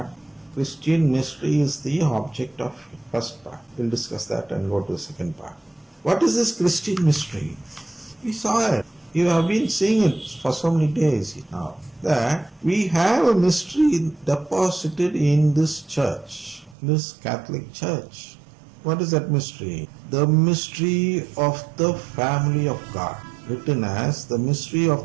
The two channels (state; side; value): drops out; left; at 16.8 s